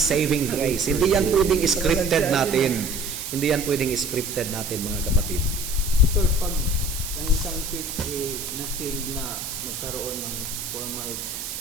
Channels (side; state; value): right; noise; hiss, 7 dB below the sound